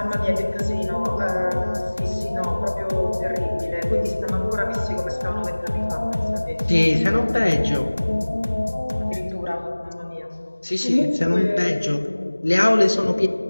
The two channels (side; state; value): both; inverted; correlation -1.00